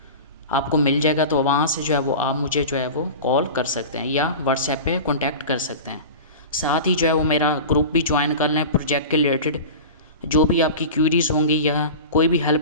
आपको मिल जाएगा, तो वहाँ से जो है वो आप मुझे जो है वो कॉल कर सकते हैं या व्हाट्सएप पे कॉन्टैक्ट कर सकते हैं। साथ ही जो है वो मेरा ग्रुप भी ज्वाइन कर लें। प्रोजेक्ट के रिलेटेड जो भी आपकी क्यूरीज़ होंगी या कोई भी हेल्प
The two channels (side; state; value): both; inverted; correlation -0.31